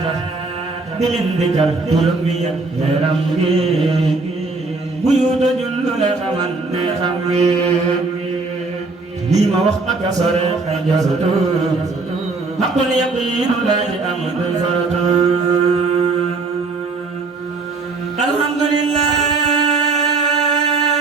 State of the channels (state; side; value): quieter; left; 3.8 dB